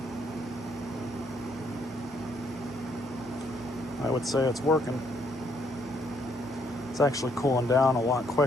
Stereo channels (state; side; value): normal; both; correlation 0.70